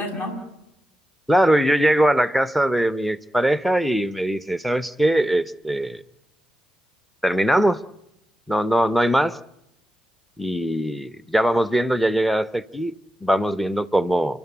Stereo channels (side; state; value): both; normal; correlation 0.92